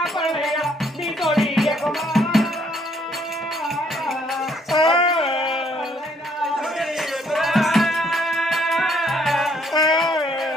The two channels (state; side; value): normal; both; correlation 0.67